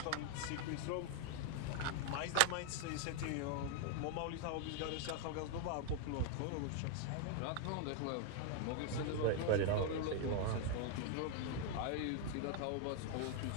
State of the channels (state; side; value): different; both; correlation 0.00